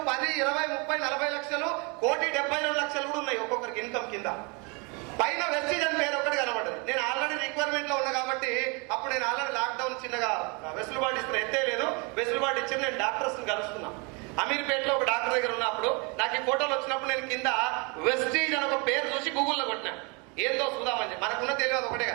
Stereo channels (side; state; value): left; quieter; 31.1 dB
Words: 10, 20, 30, 40 లక్షలు, 1,72,00,000 కూడా ఉన్నాయి ఒక్కొక్కరికి ఇన్కమ్ కింద. పైన వెస్టీజ్ అని పేరు ఒక్కటి కనబడ్డది. నేను ఆల్రెడీ రిక్వైర్మెంట్ లో ఉన్నా కాబట్టి అప్పుడు నేను ఆల్రెడీ లాక్డౌన్ చిన్నగా వెసులుబాటు ఇస్తున్నా, ఎత్తే లేదు వెసులుబాటు ఇచ్చి నేను డాక్టర్స్ కలుస్తున్నా. అమీర్పేటలో ఒక డాక్టర్ దగ్గర ఉన్నప్పుడు నాకు ఈ ఫోటోలు వచ్చినప్పుడు నేను కింద వెస్టీజ్ అని ఒక పేరు చూసి గూగుల్లో కొట్టినా, ఏందో చూద్దామని చెప్పి. మనకున్న తెలియదు ఒకటే